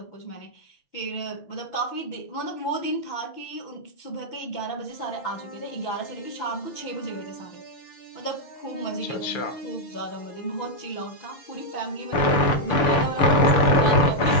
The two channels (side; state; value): right; late; 6.8 ms